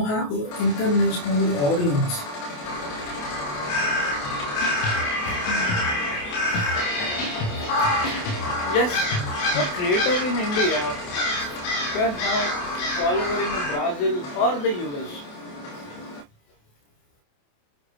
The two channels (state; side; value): late; right; 28 ms